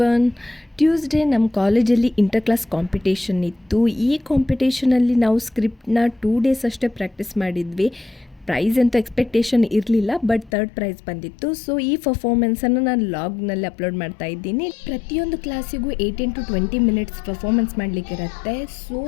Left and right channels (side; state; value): right; drops out; at 10.5 s